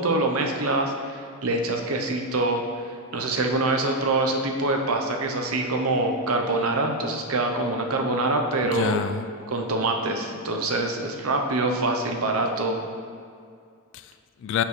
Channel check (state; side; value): normal; both; correlation 0.02